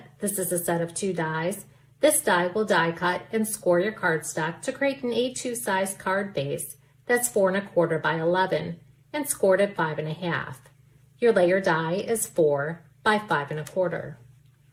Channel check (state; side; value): identical; both; correlation 1.00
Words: This is a set of 2 dies. This die will die cut and score your cardstock to create an A2 size card base that's 4 1/4 by 11 and scored at 5 1/2. Your layer die is 4 by 5 1/4.